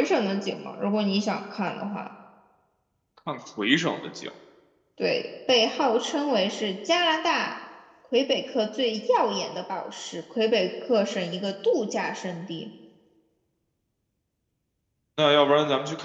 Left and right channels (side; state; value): both; identical; correlation 1.00